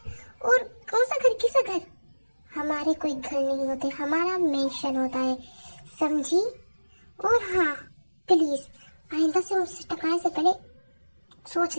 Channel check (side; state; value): both; inverted; correlation -1.00